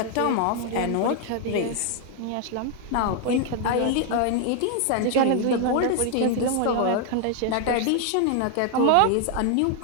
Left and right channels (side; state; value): both; different; correlation 0.00